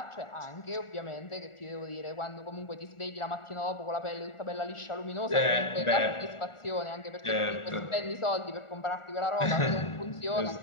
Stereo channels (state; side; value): late; right; 1.4 ms